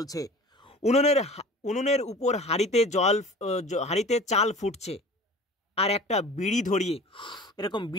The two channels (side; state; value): both; normal; correlation 0.40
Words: উনুনের উপর হাঁড়িতে চাল ফুটছে, আর একটা বিড়ি ধরিয়ে এরকম